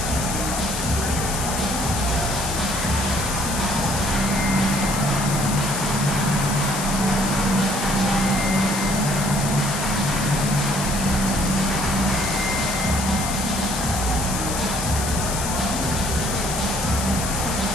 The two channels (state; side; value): noise; left; hiss, 5 dB below the sound